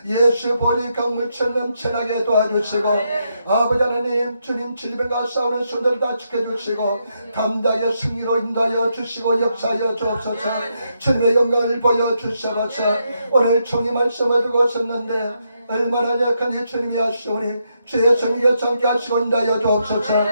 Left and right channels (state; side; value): inverted; both; correlation -0.80